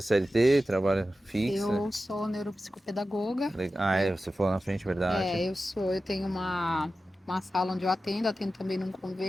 CLT, trabalha fixa? Eu sou neuropsicopedagoga. Você falou na frente, verdade. Eu tenho uma sala onde eu atendo também num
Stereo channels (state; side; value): normal; both; correlation 0.93